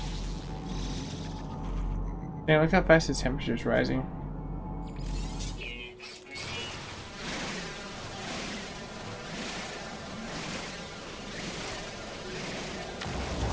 Man, look how fast the temperature's rising.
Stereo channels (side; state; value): both; identical; correlation 1.00